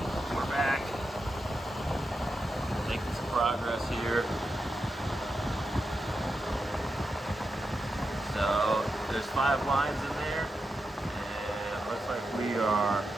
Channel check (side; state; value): both; normal; correlation 0.88